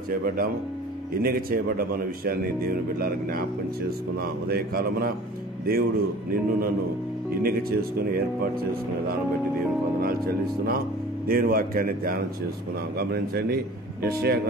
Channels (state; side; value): normal; both; correlation 0.44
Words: చేయబడ్డాము, ఎన్నిక చేయబడ్డామన్న విషయాన్ని దేవుని బిడ్డలకు జ్ఞాపకం చేసుకున్నాం. ఉదయకాలమున దేవుడు నిన్ను నన్ను ఎన్నిక చేసుకుని ఏర్పాటు చేసుకునే దాన్ని బట్టి దేవునికి వందనాలు చెల్లిస్తున్నాం. దేవుని వాక్యాన్ని ధ్యానం చేసుకున్నాం. గమనించండి, యెషయా